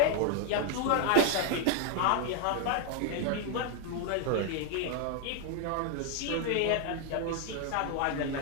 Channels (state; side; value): different; both; correlation 0.00